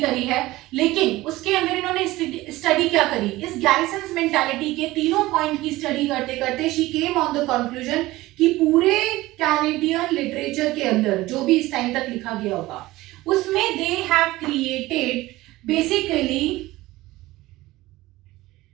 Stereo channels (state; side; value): quieter; left; 18.3 dB